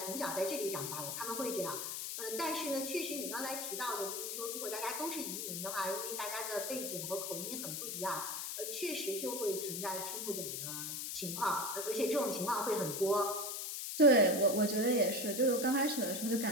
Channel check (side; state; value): left; noise; hiss, 4 dB below the sound